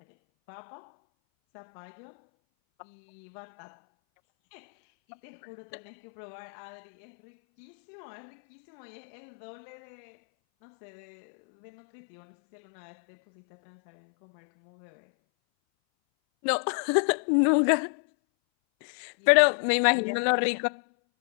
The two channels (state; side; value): silent; right; 58 dB below the other